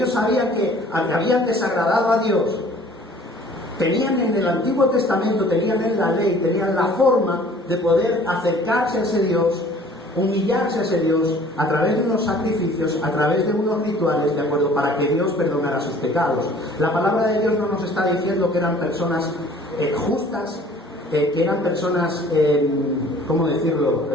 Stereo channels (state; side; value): normal; both; correlation 0.52